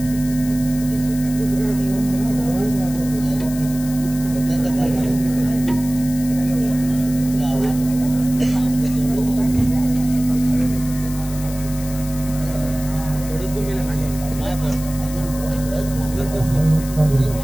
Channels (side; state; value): left; noise; hiss, 14 dB below the sound